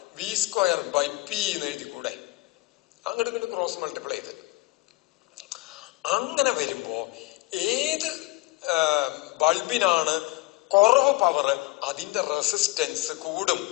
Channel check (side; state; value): right; quieter; 23.0 dB